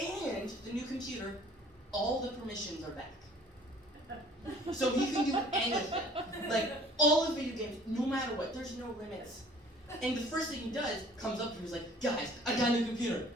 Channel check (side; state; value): both; normal; correlation 0.52